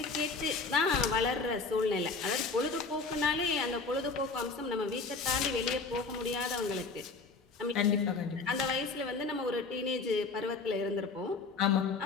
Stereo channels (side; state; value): right; quieter; 4.2 dB